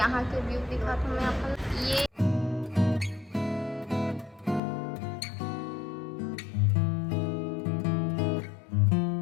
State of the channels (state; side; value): drops out; right; at 4.6 s